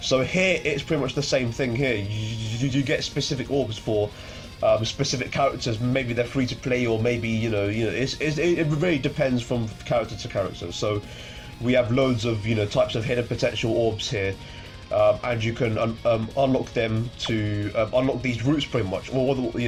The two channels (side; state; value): both; identical; correlation 1.00